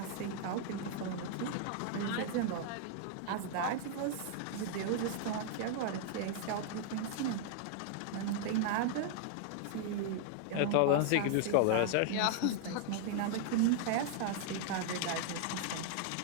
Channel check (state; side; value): different; both; correlation 0.00